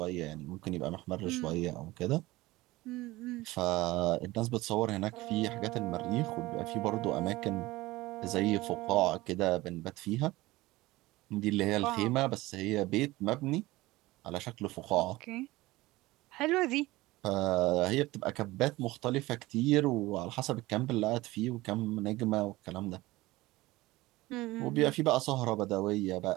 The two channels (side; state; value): left; quieter; 19.3 dB